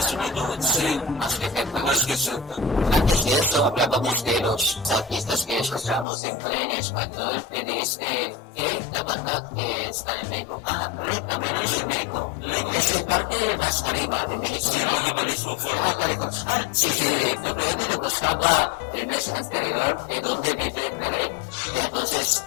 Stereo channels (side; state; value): right; drops out; at 6.1 s